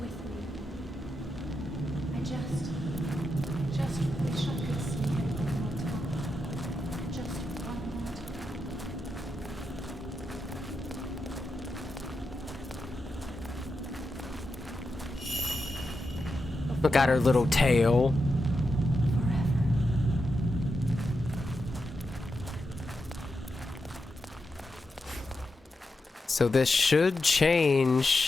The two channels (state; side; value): normal; both; correlation 0.87